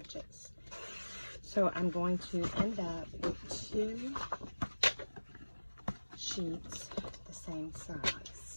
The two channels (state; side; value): inverted; both; correlation -1.00